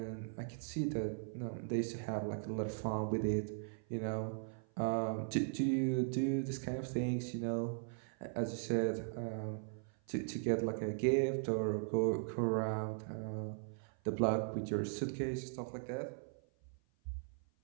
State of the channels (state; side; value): silent; left; 52 dB below the other